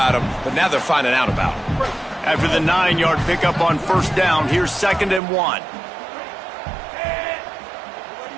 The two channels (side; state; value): left; drops out; at 5.2 s